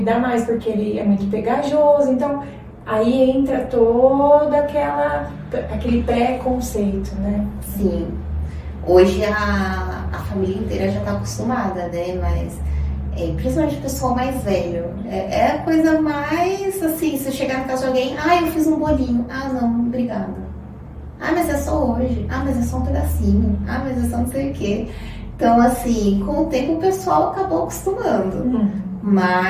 mais porque ele é muito pegajoso. Então, aí entra todo aquele preconceito, né? Sim. Hoje a família inteira já tá acostumada, né? Mas principalmente o pessoal mais velho. É a coisa mais assim, se chegar na casa de alguém, eu fiz um bolinho. Não, obrigada. Mas é só hoje. Mas é só um pedacinho. Mas é só não sei o quê. Então, assim, com o tempo o pessoal acabou acostumando.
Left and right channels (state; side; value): identical; both; correlation 1.00